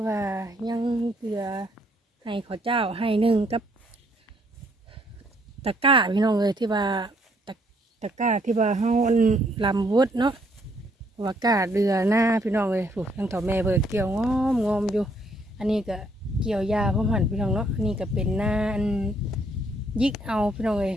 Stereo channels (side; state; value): both; normal; correlation 0.69